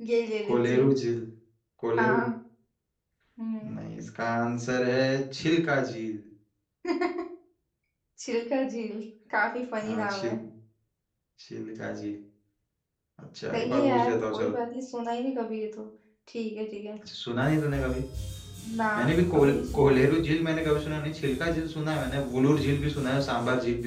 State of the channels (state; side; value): identical; both; correlation 1.00